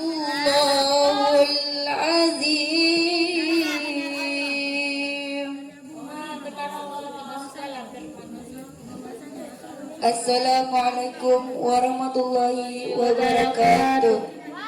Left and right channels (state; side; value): identical; both; correlation 1.00